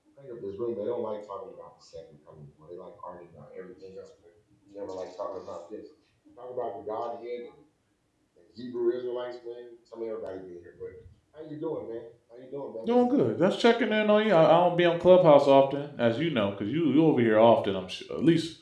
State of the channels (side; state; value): both; identical; correlation 1.00